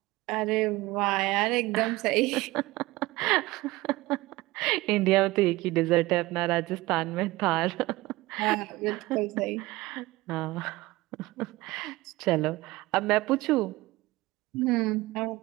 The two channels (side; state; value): left; quieter; 19.7 dB